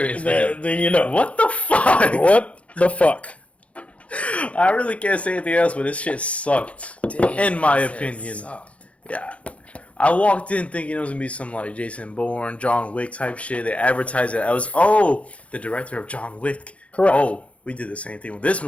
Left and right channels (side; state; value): right; late; 0.063 ms